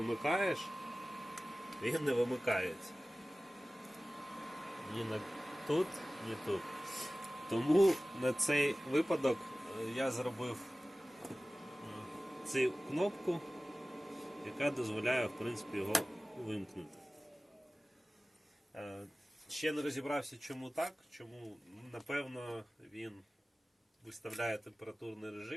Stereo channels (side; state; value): both; normal; correlation 0.97